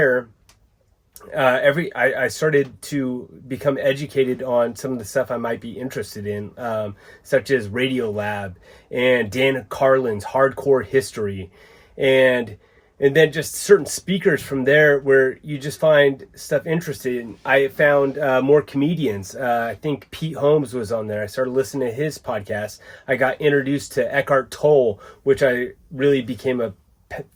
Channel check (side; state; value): both; identical; correlation 1.00